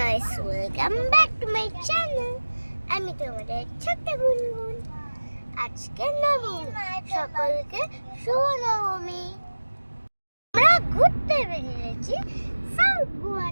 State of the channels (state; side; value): inverted; both; correlation -1.00